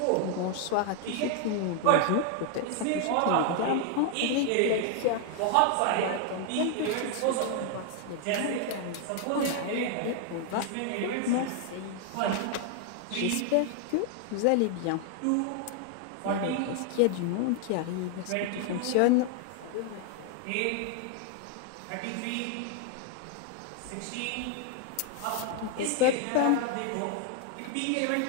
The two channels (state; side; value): different; both; correlation 0.00